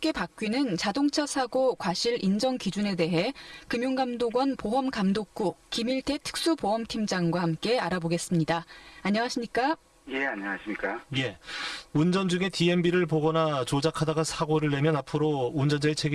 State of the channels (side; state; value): both; identical; correlation 1.00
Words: 바뀌는 자동차 사고 과실 인정 기준에 대해 금융감독원 보험감독국 김일태 특수보험팀장과 함께 알아보겠습니다. 안녕하십니까? 예, 안녕하십니까. 예. 운전 중에 DMB를 보거나 조작하다가 사고를 내면 앞으로 운전자의